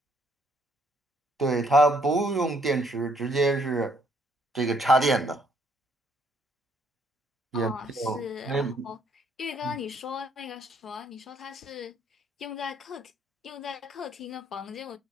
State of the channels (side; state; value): both; normal; correlation 0.67